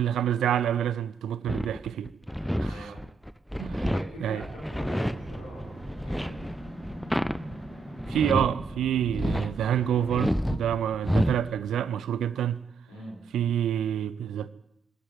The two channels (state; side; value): quieter; left; 5.1 dB